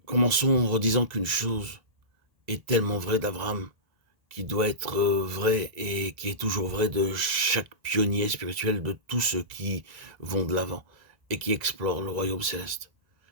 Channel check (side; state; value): left; late; 2.0 ms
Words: Commençons en redisant qu'une chose est tellement vraie d'Abraham, qui doit être vraie et qui est toujours vraie de chaque pionnier spirituel, de tous ceux qui vont de l'avant et qui explorent le royaume céleste.